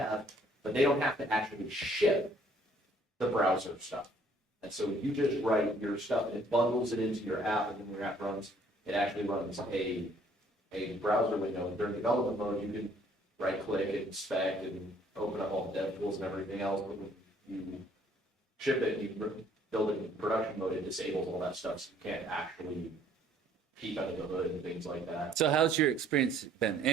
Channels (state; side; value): normal; both; correlation 0.61